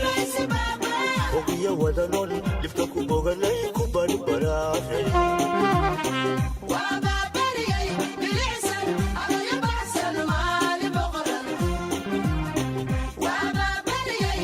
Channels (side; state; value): both; identical; correlation 1.00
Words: ogiya wadanon dhibka ku boganay ku barbaraaray